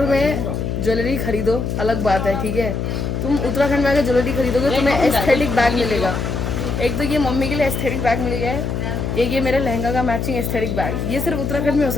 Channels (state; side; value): noise; left; hum, 2 dB below the sound